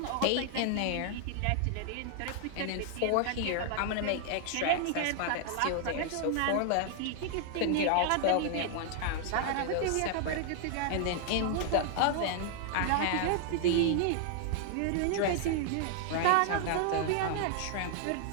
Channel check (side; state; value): both; different; correlation 0.00